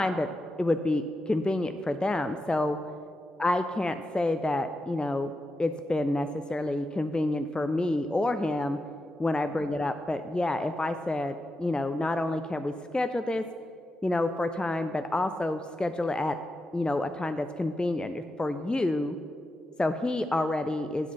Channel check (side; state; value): both; normal; correlation 0.88